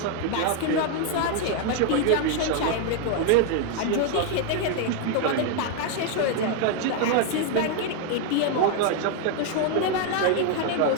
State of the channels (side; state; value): both; different; correlation 0.00